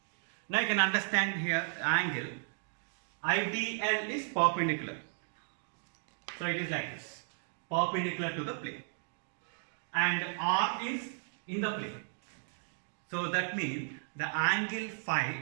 Now you can understand here angle IDL is perpendicular. So it is like this, perpendicular to the plane. And R is in the plane. So that means the angle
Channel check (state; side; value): silent; left; 55 dB below the other